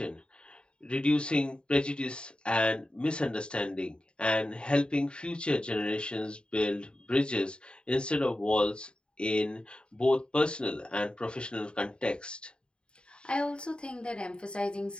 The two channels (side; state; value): right; late; 0.052 ms